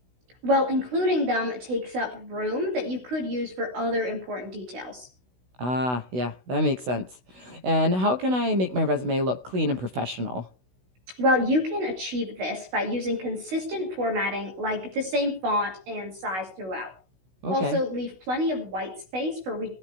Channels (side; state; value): left; late; 16 ms